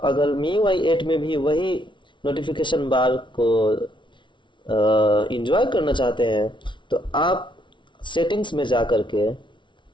अगर MIUI 8 में भी वही नोटिफिकेशन बार को इंजॉय करना चाहते हैं तो आप सेटिंग्स में जा करके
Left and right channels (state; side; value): late; right; 0.24 ms